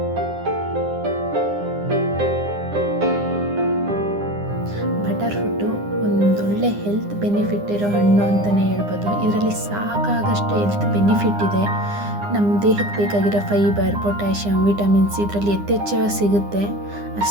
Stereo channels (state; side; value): late; left; 9.8 ms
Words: ಬಟರ್ ಫ್ರೂಟು ಒಂದೊಳ್ಳೆ ಹೆಲ್ತ್ ಬೆನಿಫಿಟ್ ಇರೋ ಹಣ್ಣು ಅಂತಲೇ ಹೇಳ್ಬೋದು. ಇದರಲ್ಲಿ ಸಾಕಾಗಷ್ಟು ಹೆಲ್ತ್ ಬೆನಿಫಿಟ್ ಇದೆ. ನಮ್ಮ ದೇಹಕ್ಕೆ ಬೇಕಾಗಿರೋ ಫೈಬರ್, ಪೊಟ್ಯಾಷಿಯಮ್, ವಿಟಮಿನ್ಸ್ ಇದರಲ್ಲಿ ಯಥೇಚ್ಛವಾಗಿ ಸಿಗುತ್ತೆ.